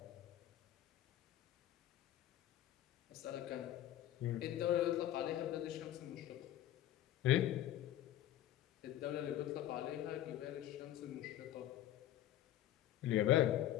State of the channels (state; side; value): quieter; right; 12.6 dB